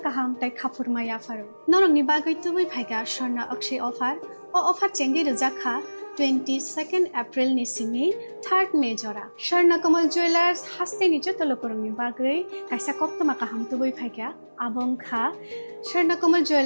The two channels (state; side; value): inverted; both; correlation -1.00